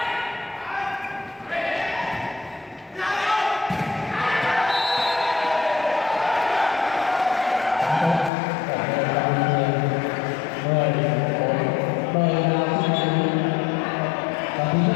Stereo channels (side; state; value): right; drops out; at 8.3 s